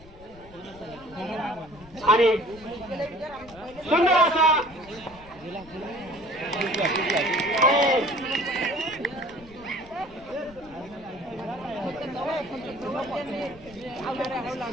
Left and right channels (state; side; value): noise; left; rumble, 21 dB below the sound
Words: आणि सुंदर असा